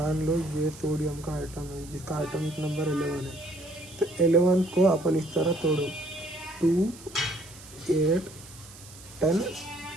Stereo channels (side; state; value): right; noise; hiss, 19 dB below the sound